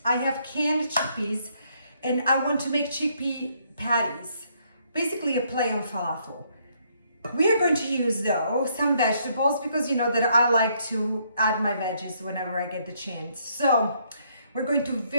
I have canned chickpeas and I want to make chickpea patties, basically a play on falafel. We are going to use though some vegetables because you know that I like to add my veggies whenever I get the chance. So we're going to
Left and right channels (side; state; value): both; inverted; correlation -0.70